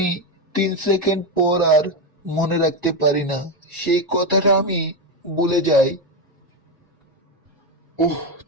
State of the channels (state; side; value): normal; both; correlation 0.10